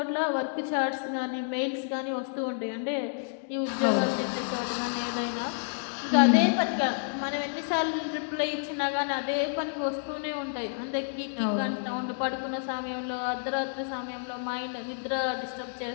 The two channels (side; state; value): right; silent; digital silence